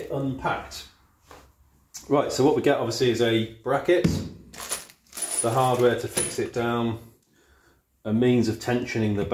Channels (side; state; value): both; identical; correlation 1.00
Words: unpacked. Right, so what we get obviously is a bracket, the hardware to fix it down, a means of tensioning the